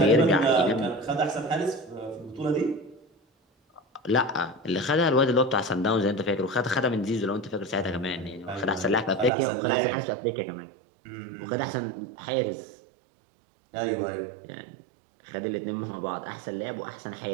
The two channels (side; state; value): left; drops out; at 9.3 s